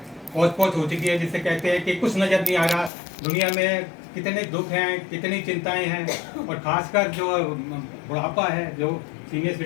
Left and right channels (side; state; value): right; drops out; at 2.9 s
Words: पहुँच पहुँच हो चुकी है, जिससे कहते हैं कि कुछ नज़र नहीं आ रहा, दुनिया में कितने दुख हैं, कितनी चिंताएं हैं, और खासकर जो बुढ़ापा है, जो सीनियर